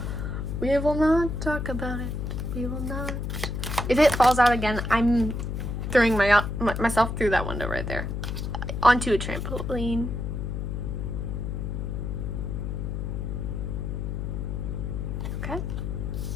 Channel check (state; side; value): noise; left; hum, 3 dB below the sound